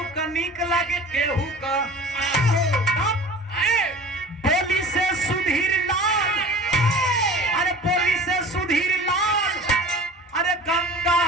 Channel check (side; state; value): both; normal; correlation 0.41